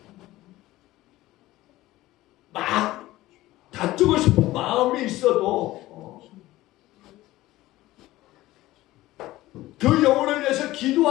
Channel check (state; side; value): quieter; right; 16.9 dB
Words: 막 다투고 싶은 마음이 있어도 그 영혼을 위해서